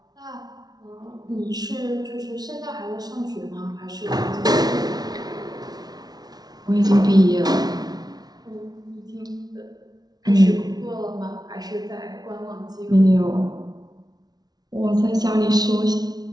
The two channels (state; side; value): late; left; 0.19 ms